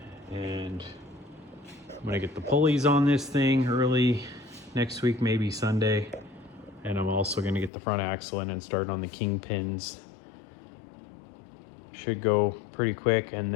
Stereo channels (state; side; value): drops out; right; at 7.7 s